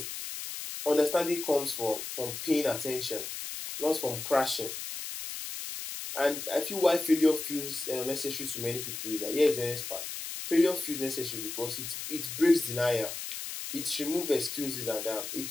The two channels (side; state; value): left; noise; hiss, 7 dB below the sound